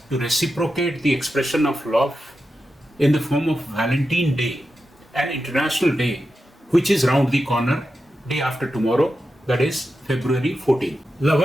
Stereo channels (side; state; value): both; normal; correlation 0.89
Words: to reciprocate the expression of love in the form of Valentine Day, an international day which is round the corner, day after tomorrow, that is February 14th.